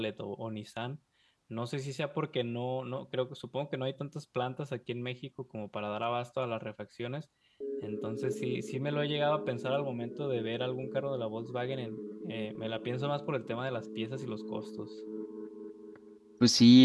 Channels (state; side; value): identical; both; correlation 1.00